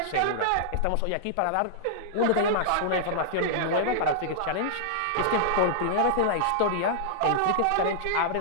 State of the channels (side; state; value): both; different; correlation -0.02